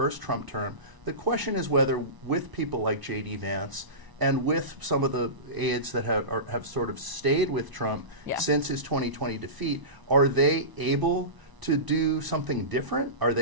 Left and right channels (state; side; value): late; left; 1.0 ms